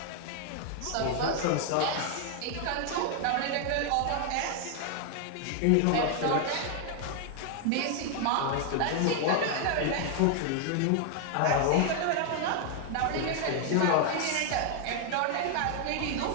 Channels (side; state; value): both; different; correlation 0.00